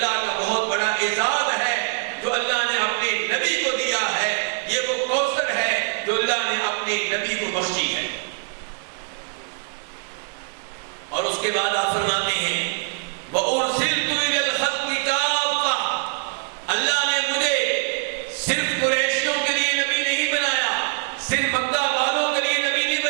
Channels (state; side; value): silent; left; 60 dB below the other